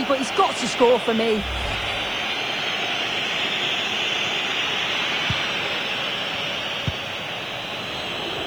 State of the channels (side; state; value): right; noise; hiss, 26 dB below the sound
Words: but he's got to score for me.